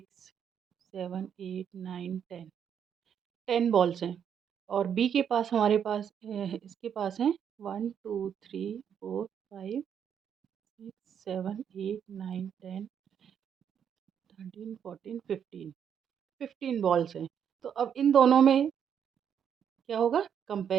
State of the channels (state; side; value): quieter; left; 8.3 dB